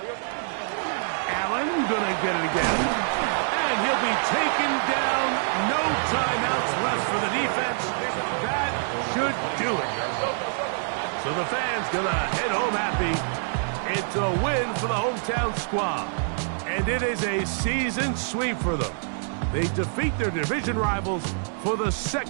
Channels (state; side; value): silent; left; digital silence